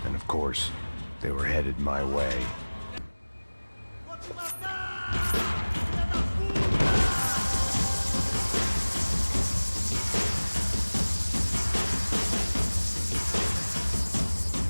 And of course, they were headed my way.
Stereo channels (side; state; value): both; inverted; correlation -1.00